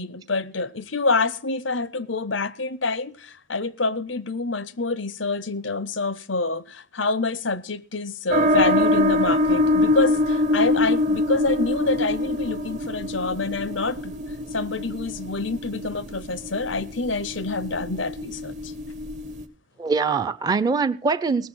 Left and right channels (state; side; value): normal; both; correlation 0.05